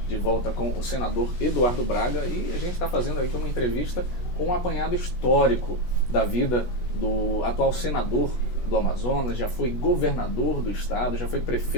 de volta com o senador Eduardo Braga e a gente está fazendo aqui uma entrevista com um apanhado histórico da vida do atual senador do Amazonas, já foi governador do estado, já foi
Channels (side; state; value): right; late; 16 ms